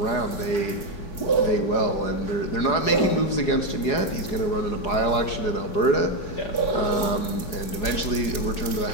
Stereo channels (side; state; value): right; late; 4.6 ms